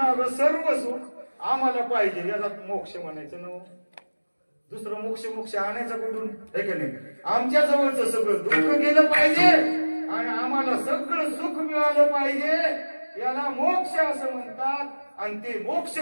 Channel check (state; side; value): inverted; both; correlation -1.00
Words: सर्व सुख आम्हाला पाहिजे. याला मोक्ष म्हणायचं ना. दुसरं मोक्ष आणायचं कुठून? हे की नाही? आमच्या जवळचं सगळं दुःख गेलं पाहिजे आणि आम्हाला सगळं सुख मिळालं पाहिजे. याला मोक्ष असं म्हणतात. आणि ते मोक्ष